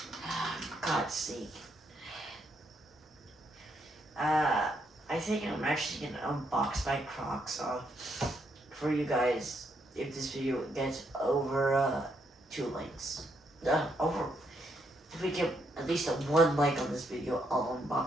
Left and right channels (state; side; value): normal; both; correlation 0.76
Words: God's sake. I think I'm actually gonna unbox my Crocs for you guys if this video gets over 2 likes. If we get at least a 1 like on this video, I'll